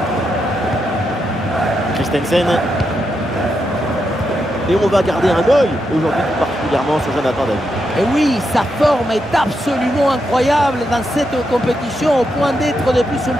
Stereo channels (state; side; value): normal; both; correlation 0.83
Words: Christensen. Et on va garder un œil aujourd'hui tout particulièrement sur Jonathan David. Et oui, sa forme est absolument incroyable dans cette compétition au point d'être de plus en